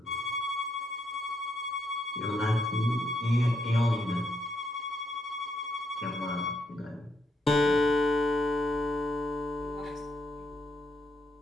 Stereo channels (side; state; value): both; normal; correlation 0.77